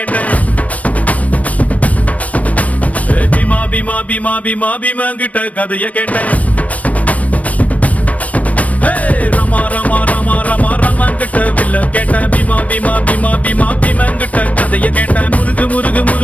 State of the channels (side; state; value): right; late; 0.068 ms